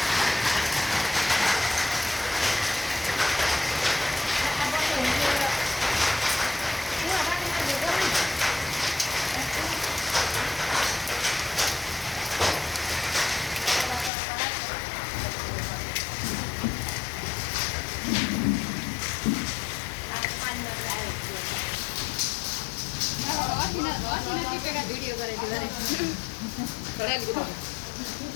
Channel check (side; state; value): right; drops out; at 14.1 s